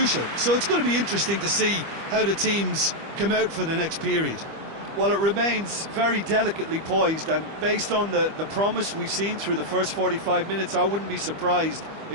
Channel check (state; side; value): late; left; 25 ms